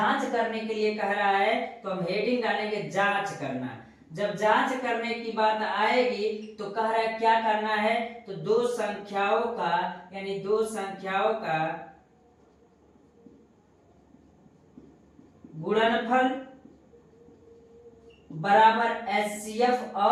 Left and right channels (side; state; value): both; identical; correlation 1.00